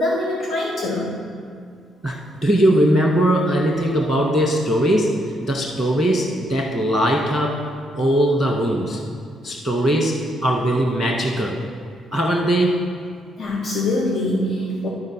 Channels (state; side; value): normal; both; correlation 0.75